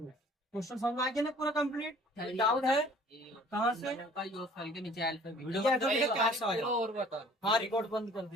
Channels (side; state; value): both; normal; correlation 0.52